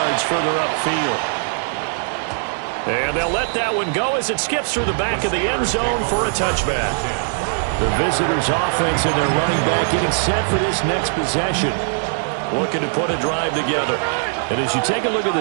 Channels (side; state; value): left; silent; digital silence